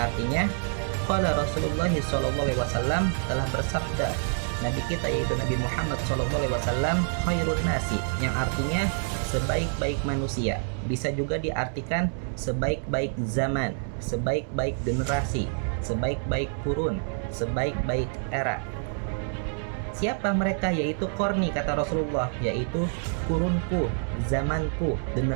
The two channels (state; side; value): silent; left; 58 dB below the other